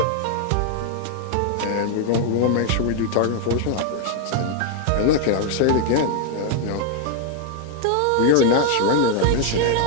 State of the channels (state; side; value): different; both; correlation 0.00